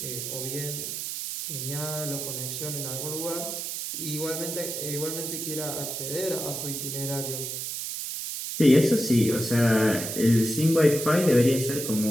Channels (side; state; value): right; noise; hiss, 5 dB below the sound